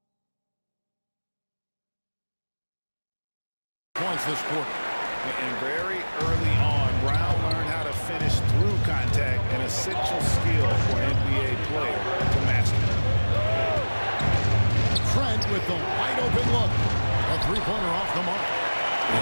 points this quarter. And very early on, Brown learned how to finish through contact, an essential skill for an NBA player to master. Trent with the wide open look. A 3-pointer off the mark.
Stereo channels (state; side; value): inverted; both; correlation -1.00